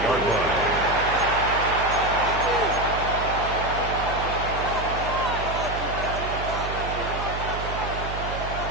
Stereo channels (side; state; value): right; noise; hum, 7 dB below the sound